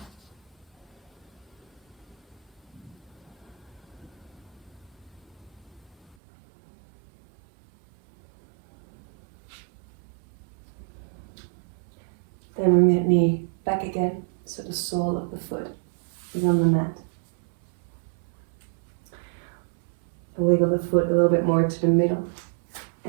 Then bring that knee back again, so the sole of the foot is on the mat. Wiggle the foot a little bit more to the middle.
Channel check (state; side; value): drops out; left; at 6.2 s